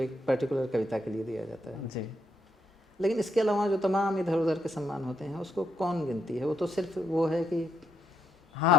पर्टिकुलर कविता के लिए दिया जाता है जी। लेकिन इसके अलावा जो तमाम इधर उधर के सम्मान होते हैं उसको कौन गिनती है? वो तो सिर्फ वो है कि हाँ,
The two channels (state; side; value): normal; both; correlation 0.78